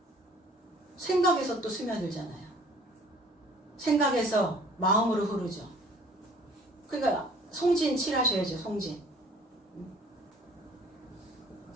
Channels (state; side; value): normal; both; correlation 0.53